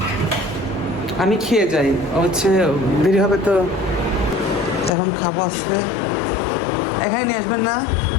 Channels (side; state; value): right; drops out; at 5.0 s